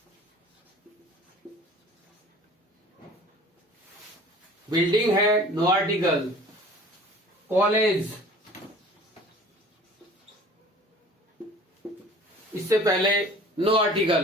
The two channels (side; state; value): both; normal; correlation 0.46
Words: बिल्डिंग है, नो आर्टिकल। कॉलेज, इससे पहले नो